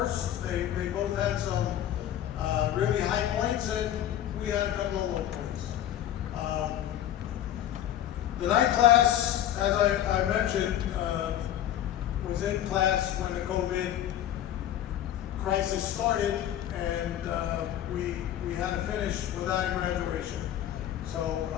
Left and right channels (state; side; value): quieter; right; 11.5 dB